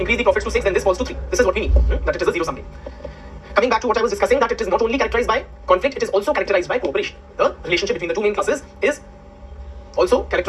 the profits to 6, then this falls to 3. This is what we mean. That it is a zero-sum game. Coming back to what I was discussing, that it is not only characterized by conflict, it is also characterized by cooperation. The relationship between the two main classes is also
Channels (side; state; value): both; identical; correlation 1.00